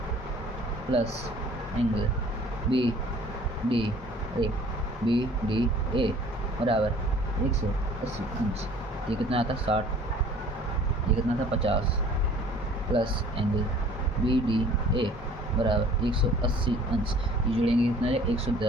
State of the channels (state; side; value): normal; both; correlation 0.51